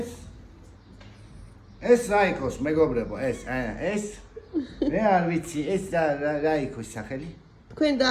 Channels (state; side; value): identical; both; correlation 1.00